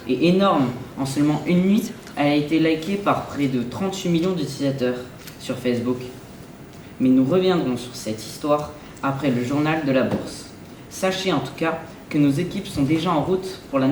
est énorme. En seulement une nuit, elle a été likée par près de 38 millions d'utilisateurs sur Facebook. Mais nous reviendrons sur cette histoire après le journal de la bourse. Sachez en tout cas que nos équipes sont déjà en route pour la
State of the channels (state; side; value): identical; both; correlation 1.00